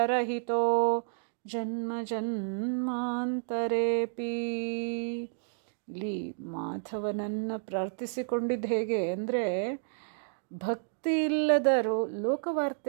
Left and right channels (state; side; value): silent; left; digital silence